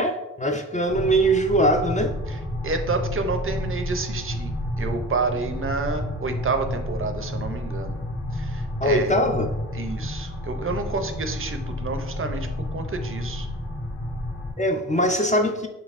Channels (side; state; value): both; normal; correlation 0.34